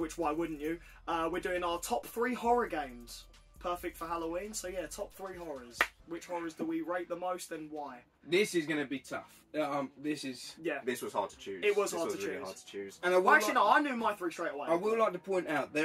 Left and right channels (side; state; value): both; identical; correlation 1.00